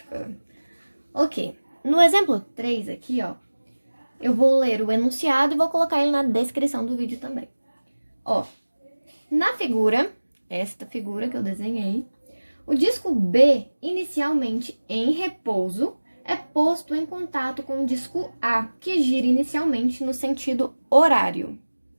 Ok, no exemplo 3 aqui, ó, eu vou ler o enunciado e vou colocar ele na descrição do vídeo também. Ó, na figura, esta figura que eu desenhei, o disco B, inicialmente em repouso, é posto em contato com o disco A, que gira inicialmente no sentido horário,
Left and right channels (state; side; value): inverted; both; correlation -1.00